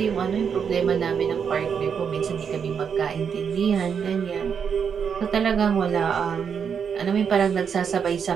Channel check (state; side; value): quieter; left; 7.0 dB